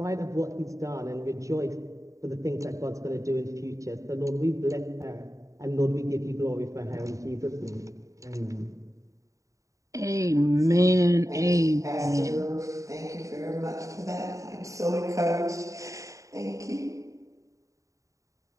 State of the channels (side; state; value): left; late; 0.16 ms